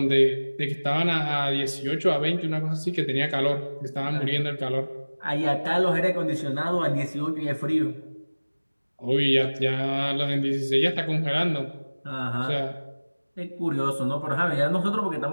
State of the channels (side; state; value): both; inverted; correlation -1.00